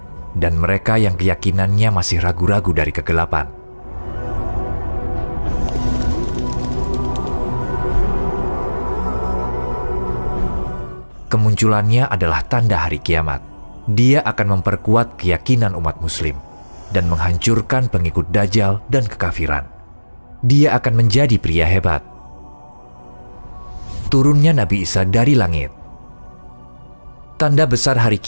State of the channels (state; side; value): inverted; both; correlation -1.00